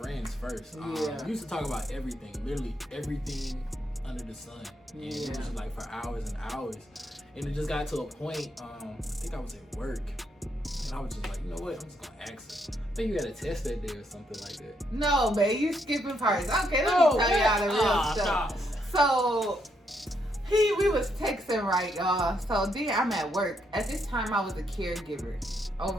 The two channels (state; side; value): normal; both; correlation 0.76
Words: first. Yeah. We used to talk about everything, literally everything under the sun. And it was just like for hours and hours. And it just got to a point, I think I was at work. And I was just like, you know what? I'm just going to ask her. I think you had a test that day or something like that. No, babe, you skipping parts. Okay, let me tell y'all the real stuff. So, we was texting, right, y'all. So then I'm at work. At this time, I was a caregiver